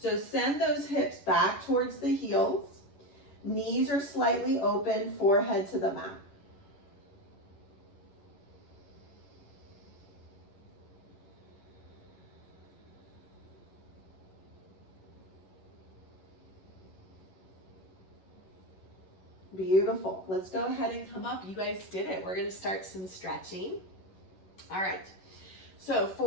send those hips back towards the heels. Knees are slightly open, forehead to the mat. Beautiful. Let's go ahead and come up. You guys did it. We're going to start some stretching. All right. So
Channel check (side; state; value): right; late; 11 ms